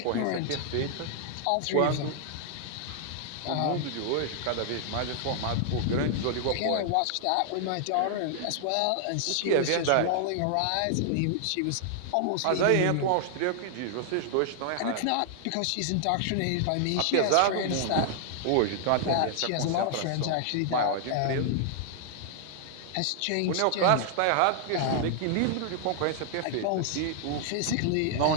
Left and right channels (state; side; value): different; both; correlation 0.00